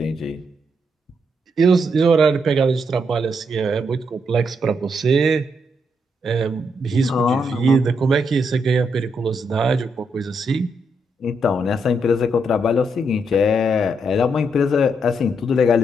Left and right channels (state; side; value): normal; both; correlation 0.78